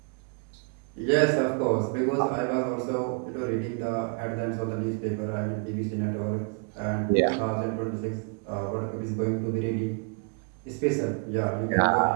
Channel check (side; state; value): left; quieter; 38.4 dB